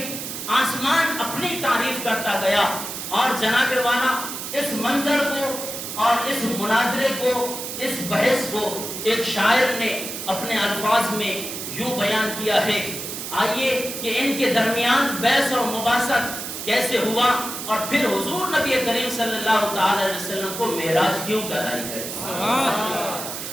آسمان اپنی تعریف کرتا گیا۔ اور جناب والا اس منظر کو اور اس مناظرے کو، اس بحث کو ایک شاعر نے اپنے الفاظ میں یوں بیان کیا ہے، آئیے کہ ان کے درمیان بحث اور مباحثہ کیسے ہوا اور پھر حضور نبی کریم صلی اللہ تعالی علیہ وسلم کو معراج کیوں کرائی گئی۔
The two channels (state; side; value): noise; right; hiss, 7 dB below the sound